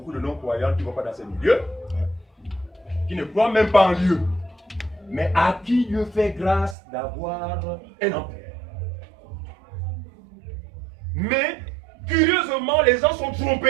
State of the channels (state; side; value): drops out; left; at 6.8 s